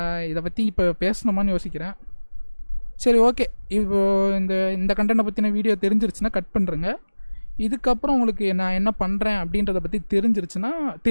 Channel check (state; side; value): inverted; both; correlation -1.00